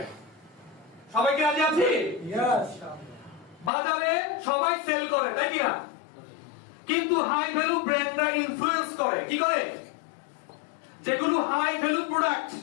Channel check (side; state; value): right; drops out; at 3.7 s